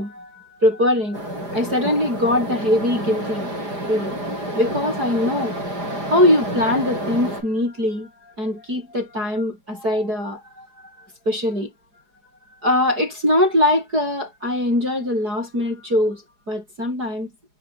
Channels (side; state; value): left; late; 4.9 ms